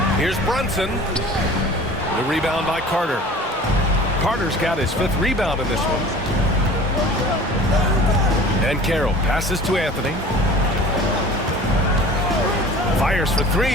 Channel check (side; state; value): both; normal; correlation 0.44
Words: Here's Brunson. The rebound by Carter. Carter's got his 5th rebound in this one. And Carroll passes to Anthony. Fires for 3.